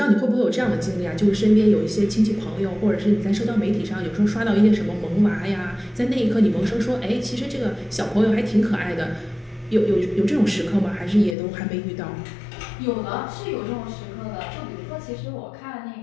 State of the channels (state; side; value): drops out; right; at 11.4 s